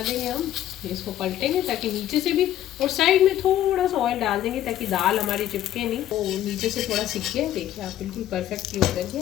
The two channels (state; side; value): quieter; right; 12.4 dB